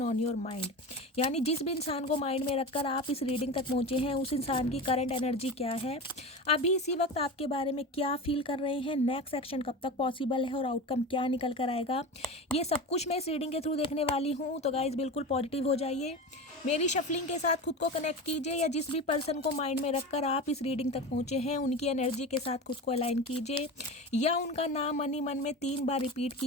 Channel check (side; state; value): both; normal; correlation 0.27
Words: ऑन योर माइंड। यानी जिस भी इंसान को माइंड में रखकर आप इस रीडिंग तक पहुँचे हैं, उस इंसान की करंट एनर्जी क्या है, अभी इसी वक्त आपके बारे में क्या फील कर रहे हैं, नेक्स्ट एक्शन कब तक पॉसिबल है और आउटकम क्या निकल कर आएगा, ये सब कुछ मैं इस रीडिंग के थ्रू देखने वाली हूँ। तो गाइज बिल्कुल पॉजिटिव हो जाइए, मेरी शफलिंग के साथ खुद को कनेक्ट कीजिए, या जिस भी पर्सन को माइंड में रखकर आप इस रीडिंग तक पहुँचे हैं उनकी एनर्जी के साथ खुद को अलाइन कीजिए, या उनका नाम मन ही मन में 3 बार रिपीट